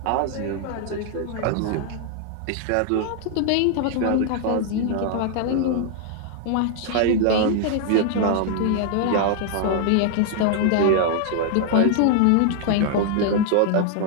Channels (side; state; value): both; different; correlation 0.00